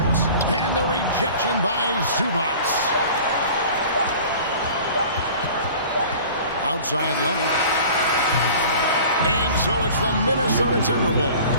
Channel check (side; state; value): both; inverted; correlation -0.43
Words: And the rejection by Zubats. Outside Leonard. And so it's the Minnesota